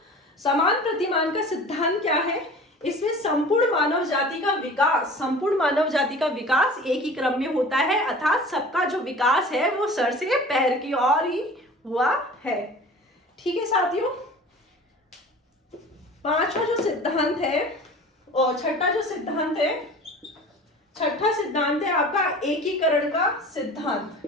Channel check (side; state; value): both; normal; correlation 0.41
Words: समान प्रतिमान का सिद्धांत क्या है, इसमें संपूर्ण मानव जाति का विकास, संपूर्ण मानव जाति का विकास एक ही क्रम में होता है, अर्थात सबका जो विकास है वो सर से पैर की ओर ही हुआ है। ठीक है साथियों, 5वां जो सिद्धांत है और छठा जो सिद्धांत है, छठा सिद्धांत है आपका एकीकरण का सिद्धांत।